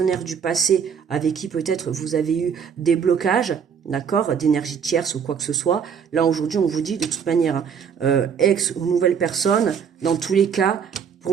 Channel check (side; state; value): left; quieter; 7.0 dB